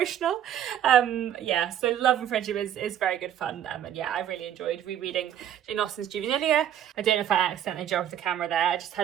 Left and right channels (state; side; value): quieter; left; 10.2 dB